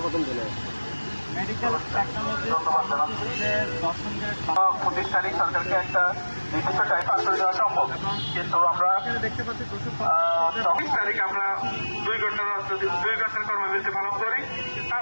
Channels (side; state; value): both; inverted; correlation -1.00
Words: মেডিকেল টেকনোলজি ধন্যবাদ জানাচ্ছি। প্রতিষ্ঠানিক সরকারকে একটা নির্দিষ্ট টাইম পাস করে দেওয়া সম্ভব, কিন্তু আমরা দেখতে পাচ্ছি 24 তারিখ আমরা 2 ঘন্টার কর্মবিরতি পালন করি।